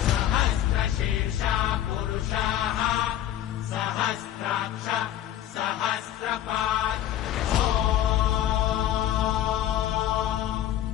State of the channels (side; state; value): right; quieter; 11.8 dB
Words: सहस्रशीर्षा पुरुषाः सहस्राक्ष सहस्रपात्